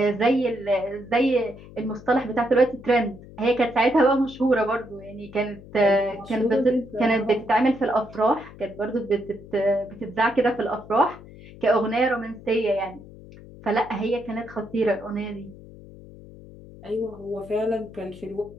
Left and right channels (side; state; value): left; noise; hum, 18 dB below the sound